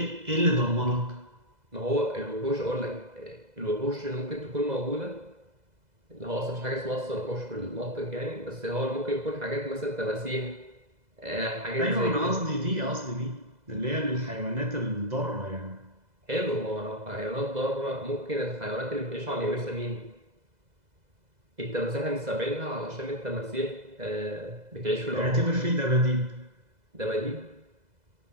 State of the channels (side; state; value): left; late; 2.0 ms